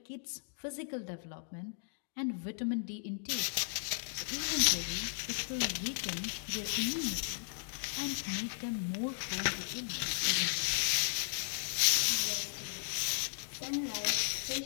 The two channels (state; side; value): silent; right; digital silence